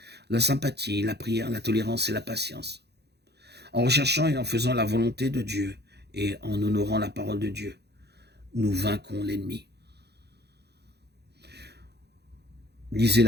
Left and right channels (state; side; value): late; left; 0.48 ms